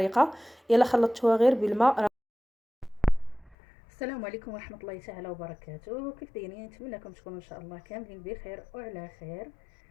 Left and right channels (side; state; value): right; drops out; at 3.6 s